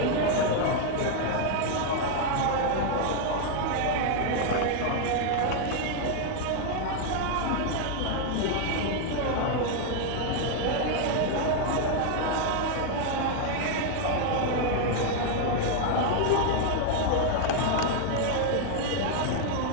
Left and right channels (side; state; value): both; different; correlation 0.00